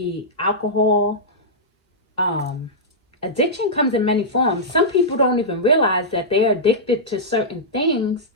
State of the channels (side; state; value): both; normal; correlation -0.11